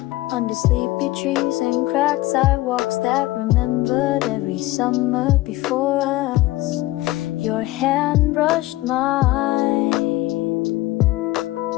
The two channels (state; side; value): quieter; right; 18.1 dB